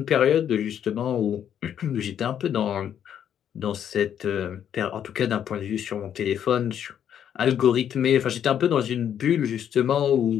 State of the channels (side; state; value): right; quieter; 9.3 dB